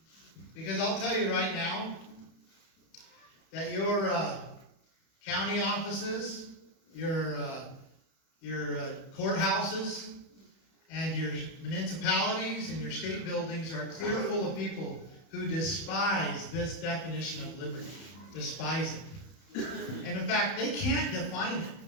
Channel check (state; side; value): late; right; 31 ms